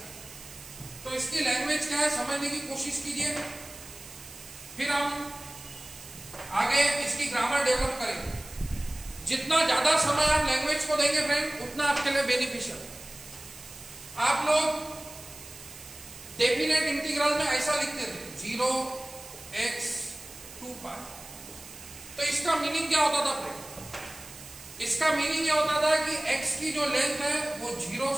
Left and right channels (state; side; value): noise; right; hiss, 16 dB below the sound